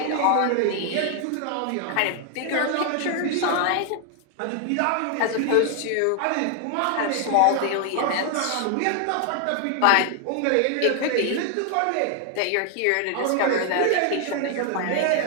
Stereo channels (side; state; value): both; different; correlation 0.00